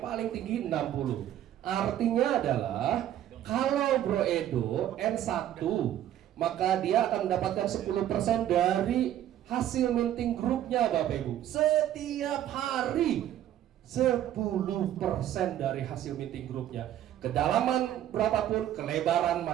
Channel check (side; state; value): left; quieter; 11.8 dB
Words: paling tinggi 60. Artinya adalah kalau Bro Edo N1, maka dia akan mendapatkan 10% dari hasil minting grupnya Bapak Ibu. Setiap hari 10% dari hasil minting grupnya. Kedalaman berapapun, kelebaran